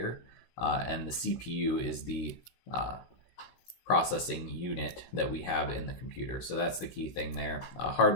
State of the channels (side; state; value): right; late; 16 ms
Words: and the CPU is the processing unit that we have in the computer. So that's the key thing there. A